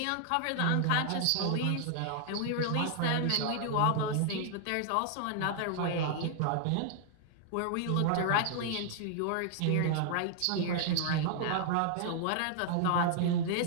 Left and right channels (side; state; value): both; different; correlation -0.01